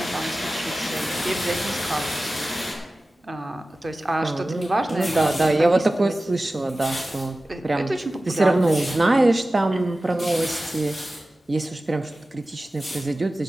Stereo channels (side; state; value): both; normal; correlation 0.96